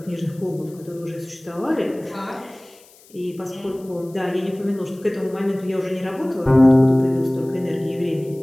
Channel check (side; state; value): left; noise; hiss, 26 dB below the sound